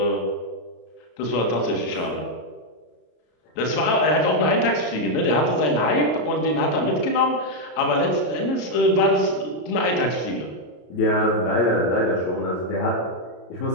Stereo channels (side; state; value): right; late; 33 ms